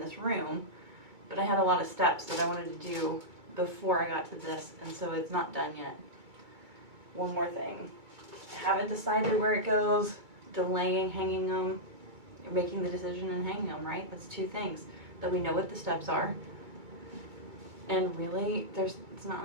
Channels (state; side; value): late; left; 2.3 ms